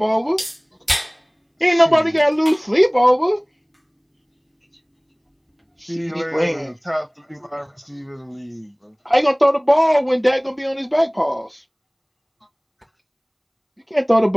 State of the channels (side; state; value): both; identical; correlation 1.00